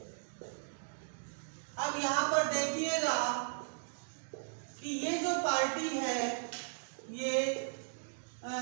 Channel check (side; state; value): left; silent; digital silence